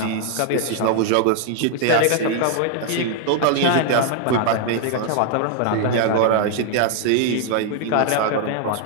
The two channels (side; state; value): both; different; correlation 0.00